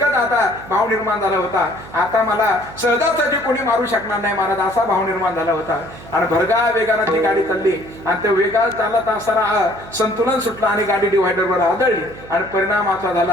आता भाव निर्माण झाला होता, आता मला सहजासहजी कोणी मारू शकणार नाही महाराज, असा भाव निर्माण झाला होता. आणि भरगा वेगानं ती गाडी चालली, आणि त्या वेगात चालत असताना संतुलन सुटलं आणि गाडी डिव्हायडरवर आदळली. आणि परिणाम असा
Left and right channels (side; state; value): right; noise; hum, 18 dB below the sound